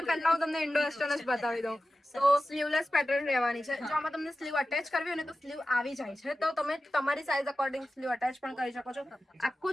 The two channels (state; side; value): normal; both; correlation 0.94